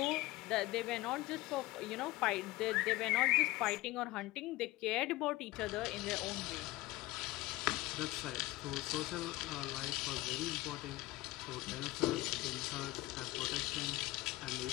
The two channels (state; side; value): quieter; right; 19.2 dB